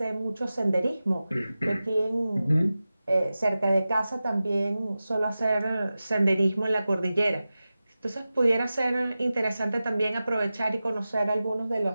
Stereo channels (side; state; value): both; inverted; correlation -0.95